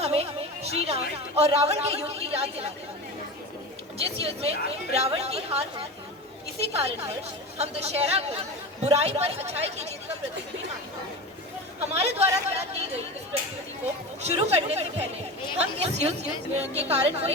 हमें श्री राम और रावण के युद्ध की याद दिलाता है, जिस युद्ध में रावण की हार हुई। इसी कारणवश हम दशहरा को बुराई पर अच्छाई की जीत का प्रतीक भी मानते हैं। हमारे द्वारा तैयार की गई इस प्रस्तुति को शुरू करने से पहले हम इस युद्ध के कारण को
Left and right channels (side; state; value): both; normal; correlation 0.28